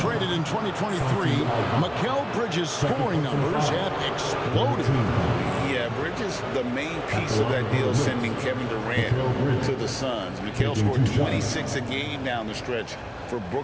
in 2023. Mikal Bridges' scoring numbers have exploded. Yeah, Bridges, the main piece of that deal, sending Kevin Durant to the Suns. Mikal scored 26 a game down the stretch for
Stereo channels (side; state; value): both; identical; correlation 1.00